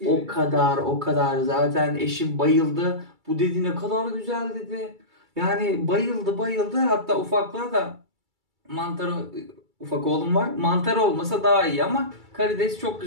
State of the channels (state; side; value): late; left; 2.3 ms